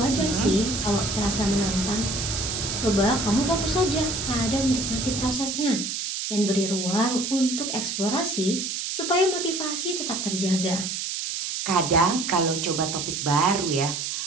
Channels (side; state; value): right; noise; hiss, 3 dB below the sound